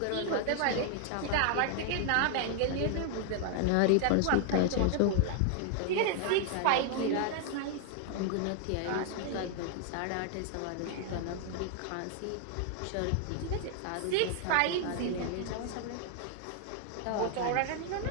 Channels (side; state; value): both; different; correlation 0.00